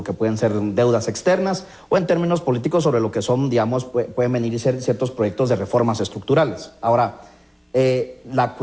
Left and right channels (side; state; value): both; identical; correlation 1.00